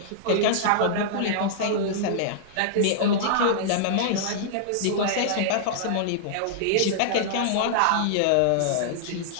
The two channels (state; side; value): different; both; correlation -0.02